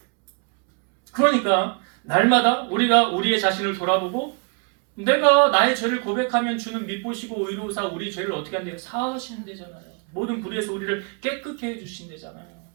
그러니까 날마다 우리가 우리의 자신을 돌아보고 내가 나의 죄를 고백하면 주는 미보시고 의로우사 우리 죄를 어떻게 한대요? 사하신대잖아요. 모든 불의에서 우리를 깨끗게 해주신대잖아요.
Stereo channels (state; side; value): quieter; left; 36.5 dB